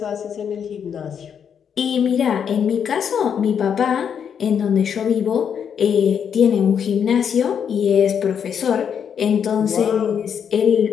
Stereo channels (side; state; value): right; quieter; 7.7 dB